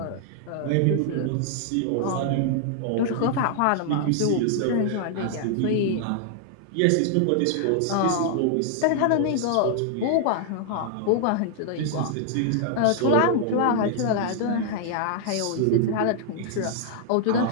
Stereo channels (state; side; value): different; both; correlation 0.00